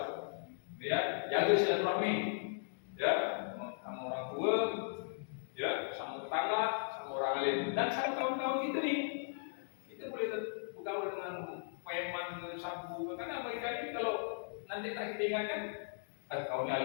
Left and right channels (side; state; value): right; silent; digital silence